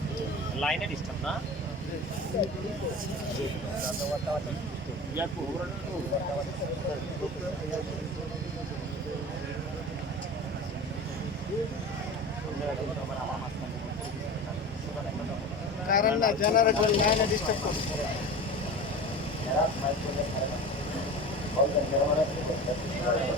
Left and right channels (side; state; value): both; normal; correlation 0.33